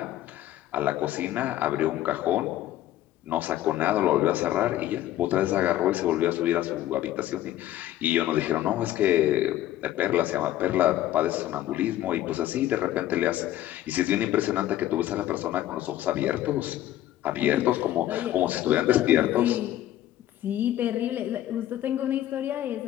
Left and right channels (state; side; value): quieter; right; 13.4 dB